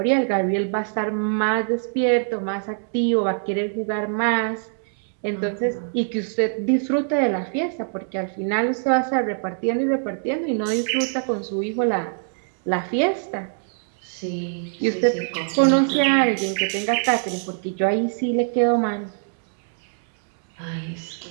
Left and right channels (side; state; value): left; silent; digital silence